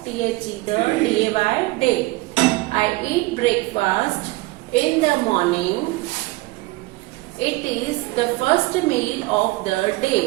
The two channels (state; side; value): quieter; left; 21.3 dB